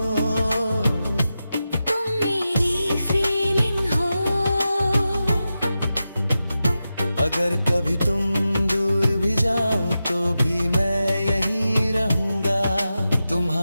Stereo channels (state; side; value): inverted; both; correlation -0.91